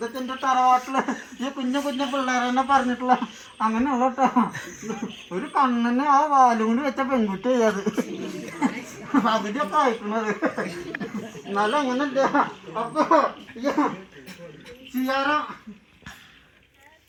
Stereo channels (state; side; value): identical; both; correlation 1.00